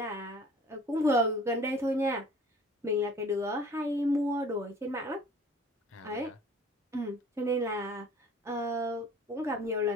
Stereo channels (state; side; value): normal; both; correlation 0.49